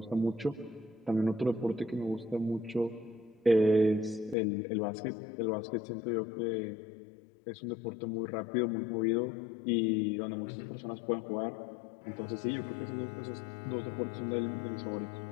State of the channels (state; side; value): drops out; right; at 4.4 s